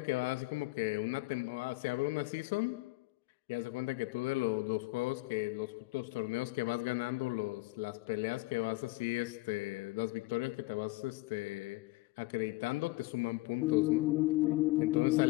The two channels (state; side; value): quieter; right; 21.4 dB